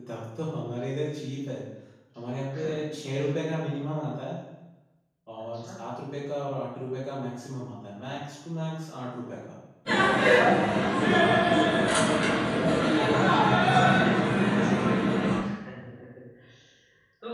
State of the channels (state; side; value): identical; both; correlation 1.00